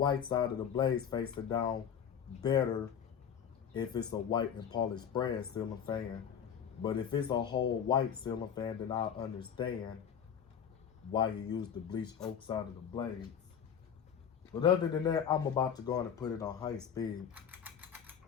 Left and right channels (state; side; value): quieter; right; 8.1 dB